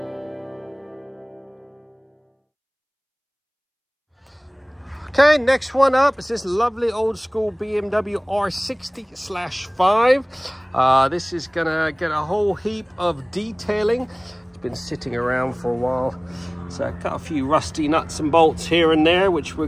next one up is this lovely old school BMW R60/5. This is gonna get a whole heap of detailing. It's been sitting around for a while. So got a few rusty nuts and bolts here and there, which we're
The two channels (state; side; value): identical; both; correlation 1.00